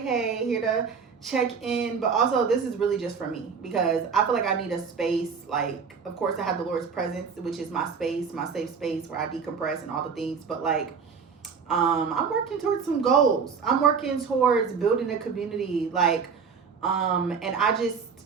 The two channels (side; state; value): left; quieter; 5.9 dB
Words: here to check in. But also, this is really just for me because I feel like I need a space. Like, of course, I have the Lord's presence, which is my space, my safe space where I decompress and all the things. But like, I'm working towards some goals. I'm working towards building a community. Like, and